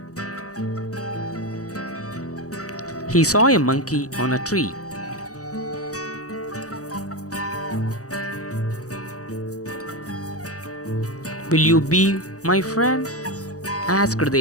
He saw a monkey on a tree. "Will you be my friend?" asked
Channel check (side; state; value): right; late; 0.66 ms